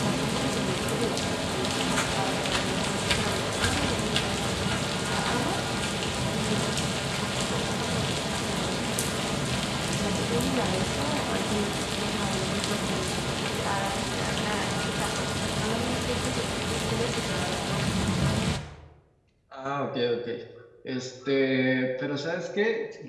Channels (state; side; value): identical; both; correlation 1.00